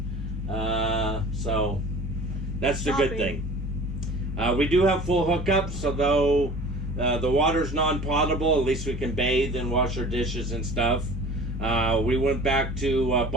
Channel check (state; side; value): normal; both; correlation 0.43